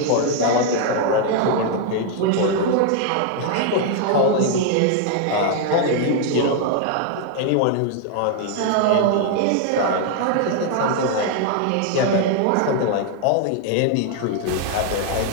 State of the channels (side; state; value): both; different; correlation 0.00